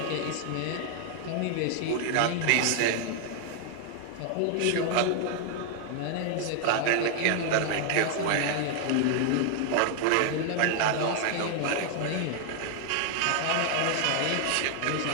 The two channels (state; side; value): different; both; correlation 0.00